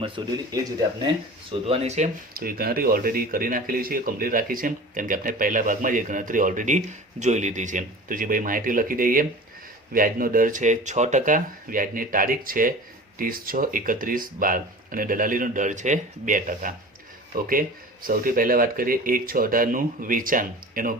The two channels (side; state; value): both; normal; correlation 0.38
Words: શોધેલી, એ જ રીતે આપણે શોધવાની છે. તો એ ગણતરી ઓલરેડી કરી નાખેલી છે, કમ્પ્લીટ રાખી છે, કેમ કે આપણે પહેલા ભાગમાં જ એ ગણતરી ઓલરેડી જોઈ લીધી છે. તો જે ભાઈ માહિતી લખી દઈએ, વ્યાજનો દર છે 6%, વ્યાજની તારીખ છે 30/6/31/12 અને દલાલીનો દર છે 2%. ઓકે, સૌથી પહેલાં વાત કરીએ 1/6/18નું વેચાણ, એનો